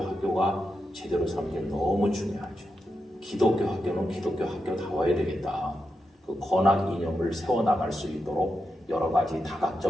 제대로 서는 게 너무 중요하죠. 기독교 학교는 기독교 학교다워야 되겠다. 그 권학 이념을 세워나갈 수 있도록 여러 가지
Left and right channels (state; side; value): normal; both; correlation 0.87